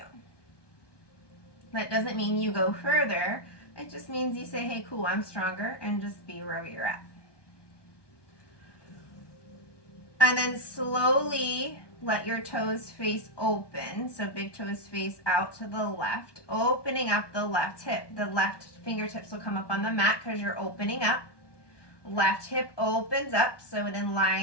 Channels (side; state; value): right; late; 1.2 ms